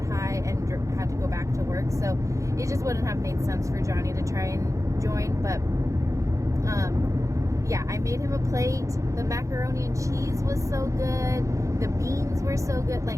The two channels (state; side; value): late; left; 0.15 ms